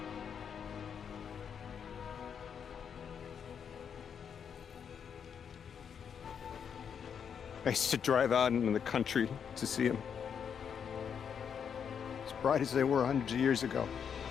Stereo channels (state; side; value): quieter; right; 7.4 dB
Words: I used to drive out into the country to see them. As bright as they were hundreds of years ago.